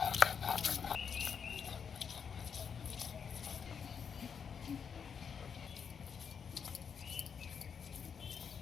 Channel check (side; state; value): right; quieter; 6.8 dB